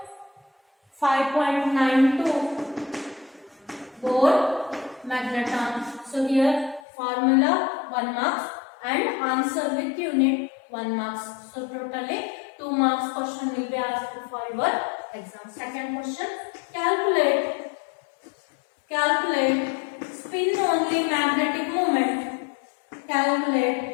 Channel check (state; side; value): drops out; right; at 6.8 s